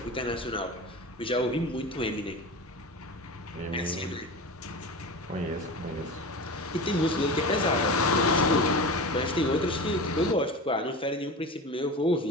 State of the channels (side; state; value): both; normal; correlation 0.30